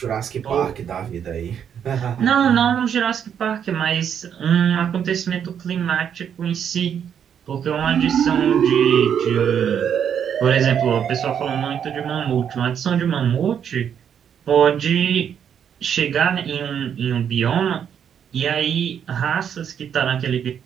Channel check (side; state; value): left; quieter; 8.4 dB